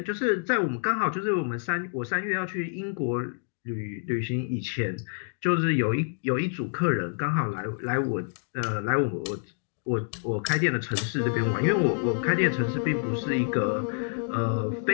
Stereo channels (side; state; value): right; silent; digital silence